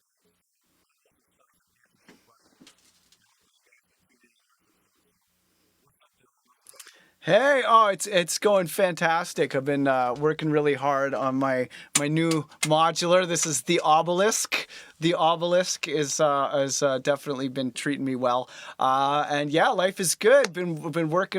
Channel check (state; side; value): identical; both; correlation 1.00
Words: Hey, oh, it's going fantastic. I've been working really hard on my new modular. This is the obelisk. The obelisk is definitely been treating me well, and yeah, life is good. Been